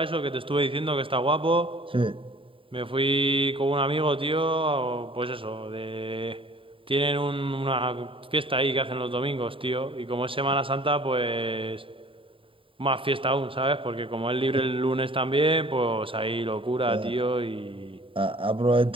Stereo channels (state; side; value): late; left; 0.25 ms